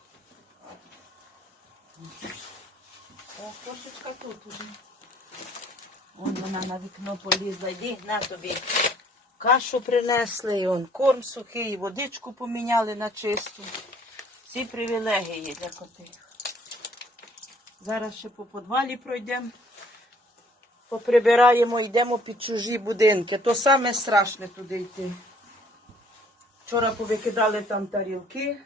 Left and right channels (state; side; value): normal; both; correlation 0.60